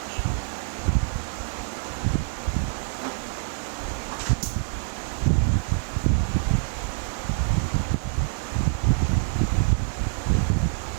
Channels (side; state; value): left; silent; 55 dB below the other